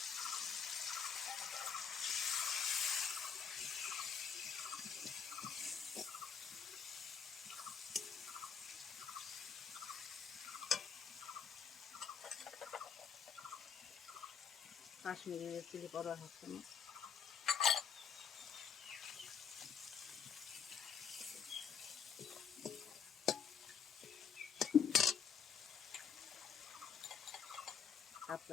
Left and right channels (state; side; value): quieter; right; 6.8 dB